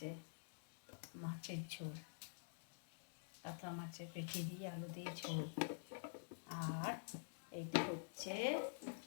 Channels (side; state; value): right; silent; digital silence